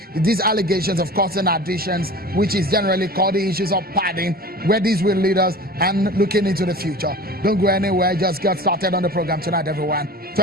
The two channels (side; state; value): both; normal; correlation 0.38